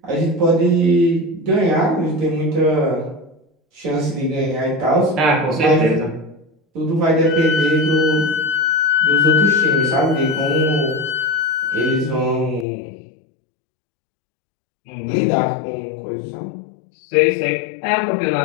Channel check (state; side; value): drops out; right; at 12.7 s